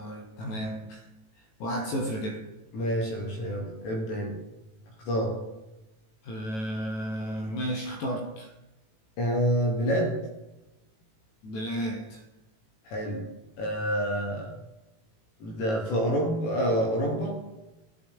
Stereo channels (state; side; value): late; right; 18 ms